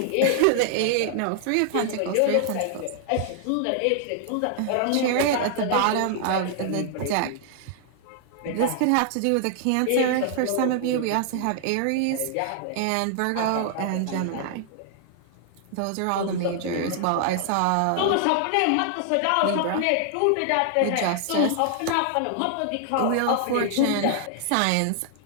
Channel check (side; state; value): both; different; correlation 0.00